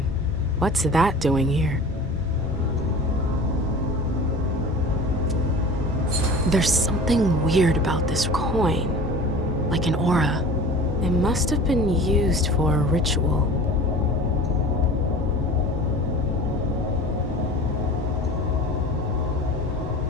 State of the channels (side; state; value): both; normal; correlation 0.40